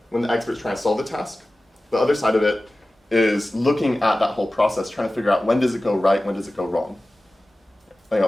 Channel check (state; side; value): normal; both; correlation 0.96